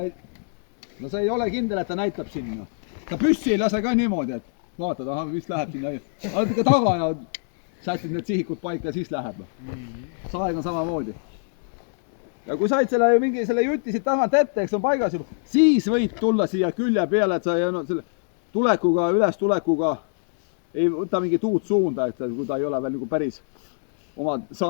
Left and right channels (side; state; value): right; silent; digital silence